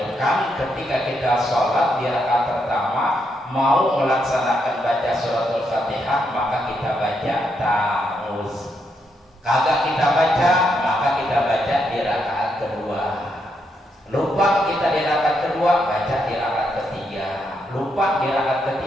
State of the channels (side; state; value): both; normal; correlation 0.79